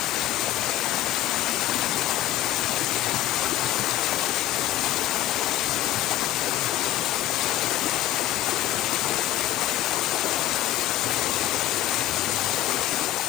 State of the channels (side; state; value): right; quieter; 14.3 dB